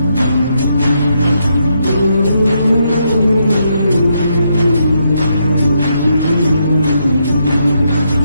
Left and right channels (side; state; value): both; inverted; correlation -0.78